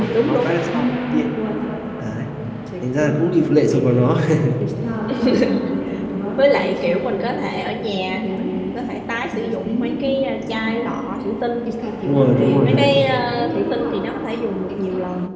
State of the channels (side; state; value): both; identical; correlation 1.00